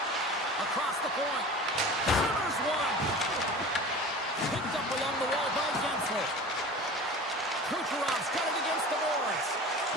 Across the point. Hammers one. Picked up along the wall by Gensel. Kucherov's got it against the boards.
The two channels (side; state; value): both; normal; correlation 0.37